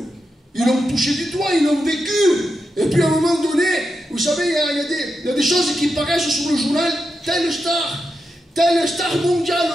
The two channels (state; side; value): normal; both; correlation 0.87